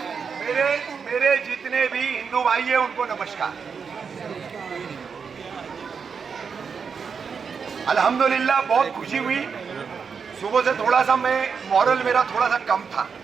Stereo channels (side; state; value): left; quieter; 6.0 dB